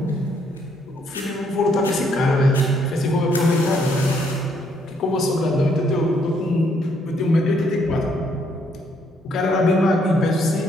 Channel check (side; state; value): both; normal; correlation 0.70